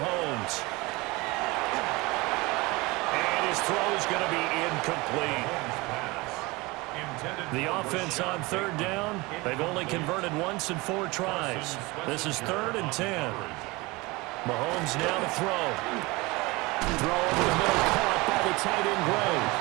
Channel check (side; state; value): left; quieter; 23.3 dB